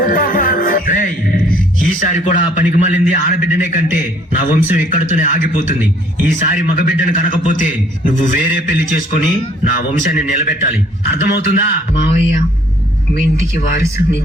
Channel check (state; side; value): normal; both; correlation 0.61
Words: ఈసారి కూడా ఆ పనికి మళ్ళింది ఆడబిడ్డనే కంటే నా వంశం ఇక్కడితోనే ఆగిపోతుంది. ఈసారి మగబిడ్డను కనకపోతే నువ్వు వేరే పెళ్లి చేసుకుని నా వంశాన్ని నిలబెట్టాలి, అర్థమవుతుందా? మావయ్య మీ ఇంటికి